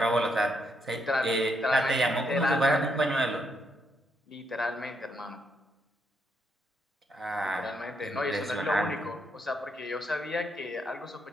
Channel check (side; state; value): both; normal; correlation 0.77